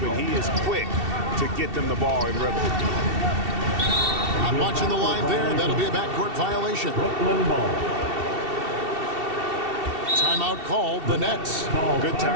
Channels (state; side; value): late; left; 2.7 ms